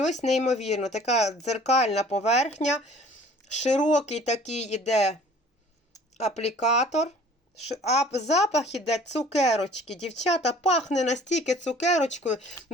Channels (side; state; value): both; normal; correlation 0.51